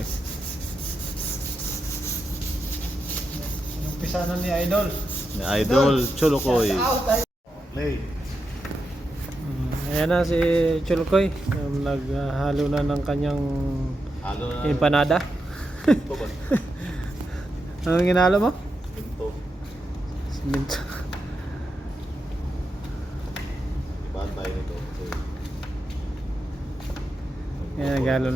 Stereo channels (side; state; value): both; normal; correlation 0.86